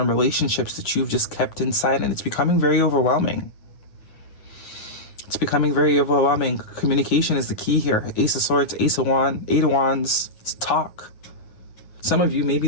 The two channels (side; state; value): right; late; 9.5 ms